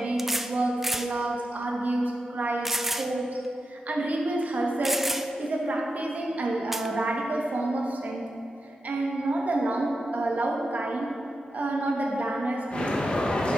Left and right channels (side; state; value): both; normal; correlation 0.88